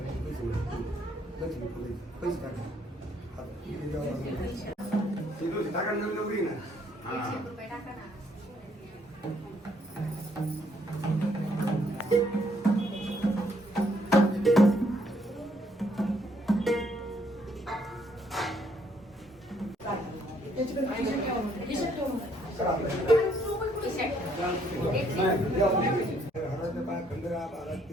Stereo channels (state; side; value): normal; both; correlation 0.69